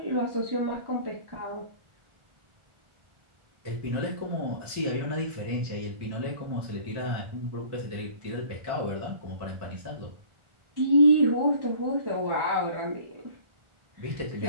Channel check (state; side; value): late; left; 1.4 ms